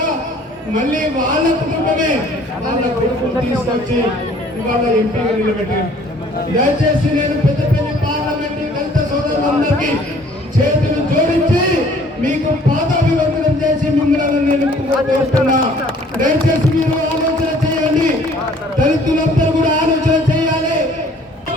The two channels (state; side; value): normal; both; correlation 0.56